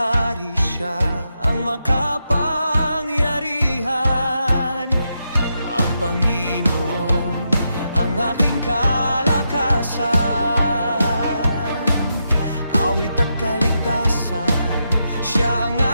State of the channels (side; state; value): both; inverted; correlation -0.84